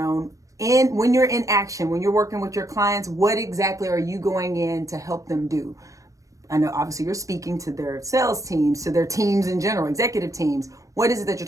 when you're in action, when you're working with your clients, what exactly are you going in to help them do? I know obviously you're speaking to their sales teams, to their teams in general, executive teams. What is it that you're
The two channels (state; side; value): late; left; 0.16 ms